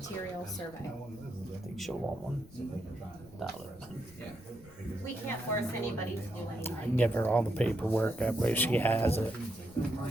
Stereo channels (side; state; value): left; noise; rumble, 22 dB below the sound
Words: survey? I think she'll want $1. We can't force anybody to do anything. I can give her all the paperwork, that way she has it.